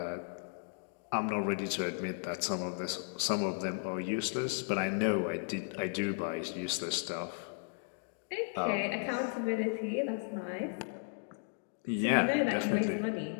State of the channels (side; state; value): right; silent; digital silence